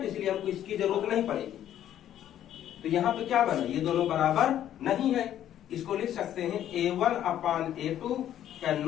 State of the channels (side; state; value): right; quieter; 11.2 dB